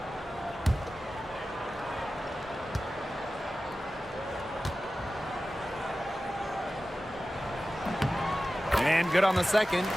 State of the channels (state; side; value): normal; both; correlation 0.95